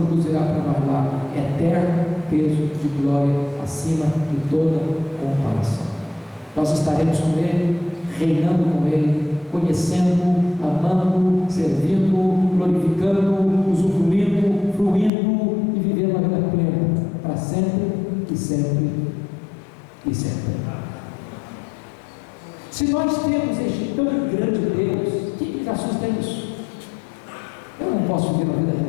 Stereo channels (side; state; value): right; drops out; at 15.1 s